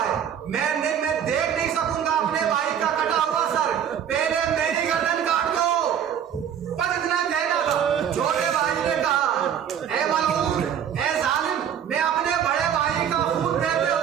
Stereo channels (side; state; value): left; quieter; 8.9 dB